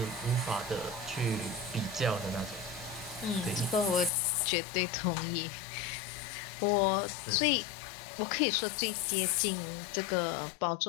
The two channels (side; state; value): right; drops out; at 4.1 s